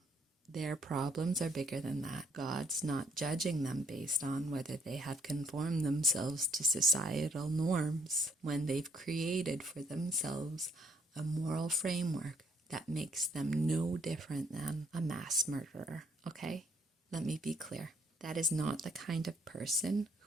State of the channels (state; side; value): normal; both; correlation 0.68